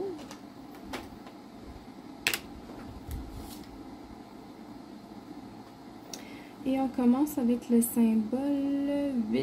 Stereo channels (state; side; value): identical; both; correlation 1.00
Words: Et on commence avec le symbole